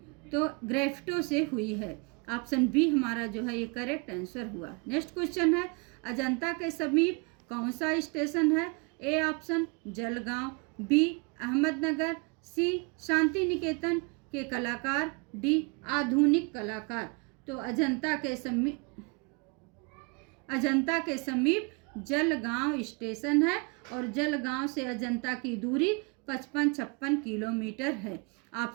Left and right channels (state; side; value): quieter; left; 31.5 dB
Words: तो ग्रेफ्टो से हुई है, ऑप्शन बी हमारा जो है ये करेक्ट आंसर हुआ। नेक्स्ट क्वेश्चन है, अजंता के समीप कौन सा स्टेशन है? A option Jalgaon, B Ahmednagar, C Shantiniketan के कलाकार, डी आधुनिक कलाकार। तो अजंता के समीप जलगांव स्टेशन है और जलगांव से अजंता की दूरी 55-56 किलोमीटर है,